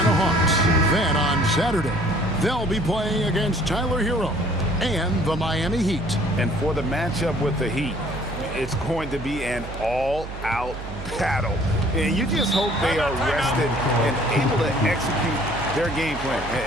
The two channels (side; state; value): right; noise; hum, 10 dB below the sound